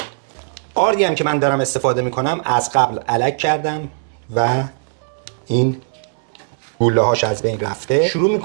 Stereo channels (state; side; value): silent; left; digital silence